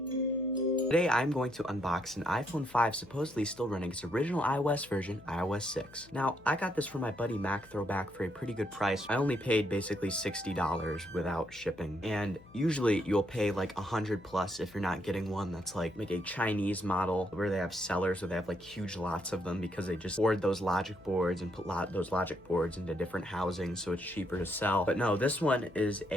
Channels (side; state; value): left; noise; hum, 24 dB below the sound